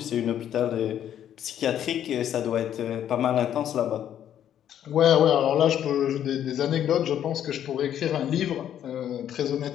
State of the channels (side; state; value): right; quieter; 10.3 dB